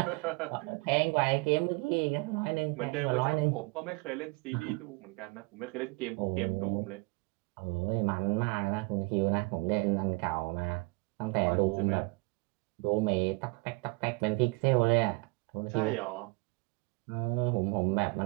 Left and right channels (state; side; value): quieter; left; 28.2 dB